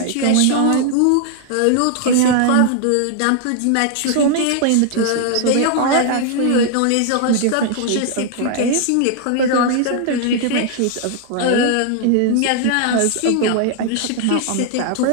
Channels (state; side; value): different; both; correlation 0.00